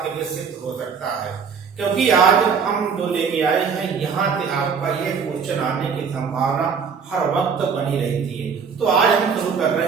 के लिए सिद्ध हो सकता है, क्योंकि आज हम जो लेके आए हैं यहाँ से आपका ये क्वेश्चन आने की संभावना हर वक्त बनी रहती है। तो आज हम शुरू कर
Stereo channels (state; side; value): quieter; left; 6.1 dB